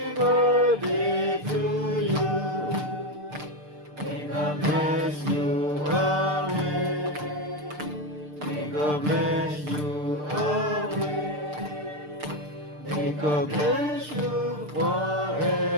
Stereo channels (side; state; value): left; late; 6.7 ms